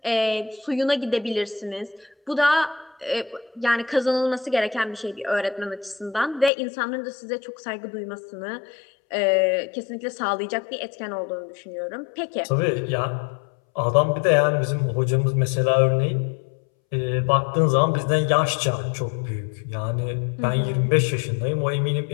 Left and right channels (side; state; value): right; drops out; at 6.5 s